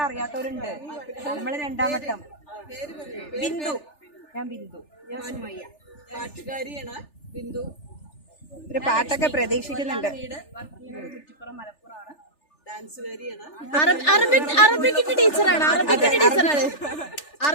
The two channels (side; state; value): right; late; 3.4 ms